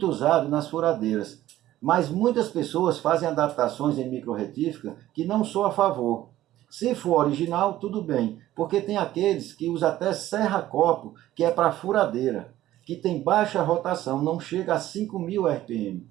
usado nas furadeiras, mas muitas pessoas fazem adaptações em microretífica que não sou a favor. Se for original, tudo bem, porque tem aqueles que usam até serra-copo, que é para furadeira, que tem baixa rotação, não chega a 5.000 RPM.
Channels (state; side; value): quieter; left; 14.2 dB